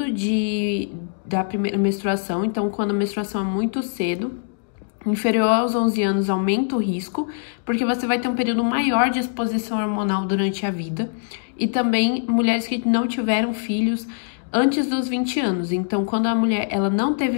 da primeira menstruação. Então, quando a menstruação é muito cedo, inferior aos 11 anos, aumenta o risco, porque você vai ter um período maior de exposição hormonal durante a vida. E também mulheres que não tiveram filhos antes dos 20 anos. Então, quando a mulher ela não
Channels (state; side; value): silent; right; digital silence